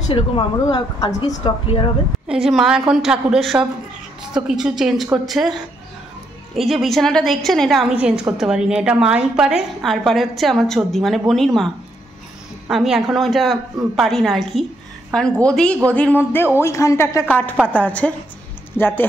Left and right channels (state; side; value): normal; both; correlation 0.76